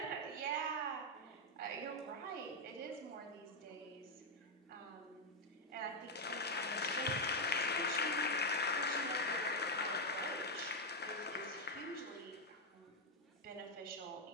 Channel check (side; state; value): both; normal; correlation 0.02